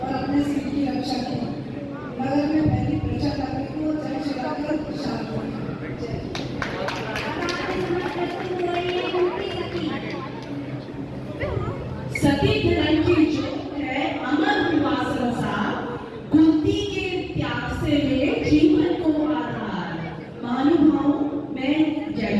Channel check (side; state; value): both; identical; correlation 1.00